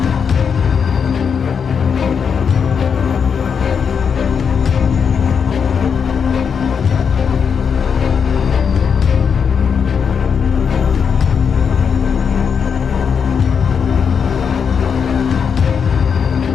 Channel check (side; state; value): right; quieter; 6.6 dB